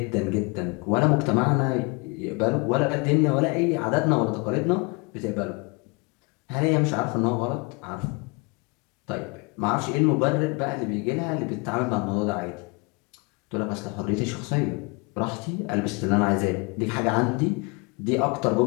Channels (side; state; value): right; quieter; 29.2 dB